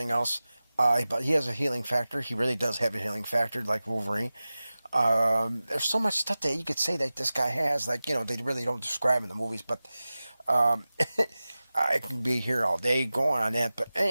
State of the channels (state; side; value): inverted; both; correlation -0.96